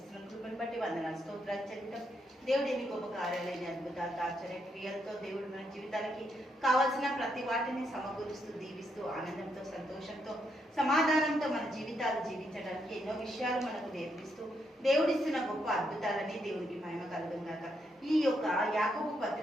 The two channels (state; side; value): normal; both; correlation 0.78